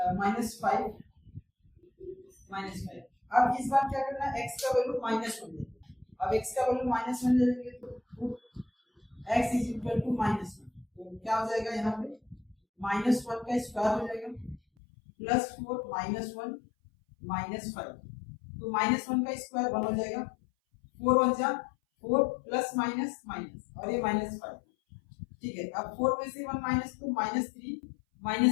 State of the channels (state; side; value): drops out; right; at 14.6 s